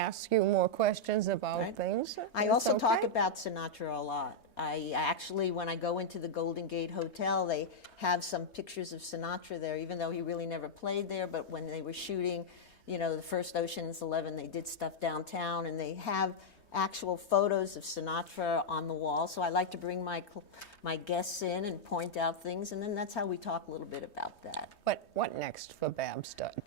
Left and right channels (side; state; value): right; late; 3.2 ms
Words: you more questions about things. I also talk about Sinatra a lot. I actually, when I go into the Golden Gate Hotel, they have some pictures of Sinatra there, even though he really never played there. But when they were shooting, the first Ocean's 11, they did stuff downtown, and they have actual photos of Sinatra on the wall. So I like to bring my guests in and point out things, and then that's how we talk a little bit about that. But what next for Babs